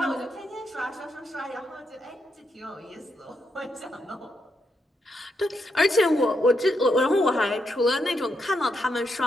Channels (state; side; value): normal; both; correlation 0.81